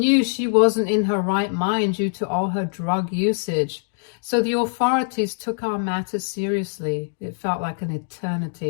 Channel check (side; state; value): right; silent; digital silence